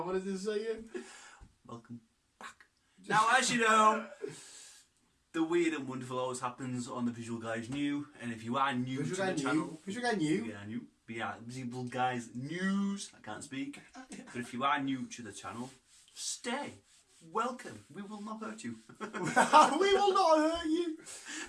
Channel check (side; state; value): both; identical; correlation 1.00